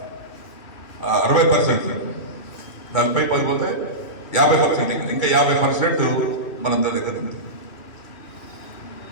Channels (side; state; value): right; late; 2.2 ms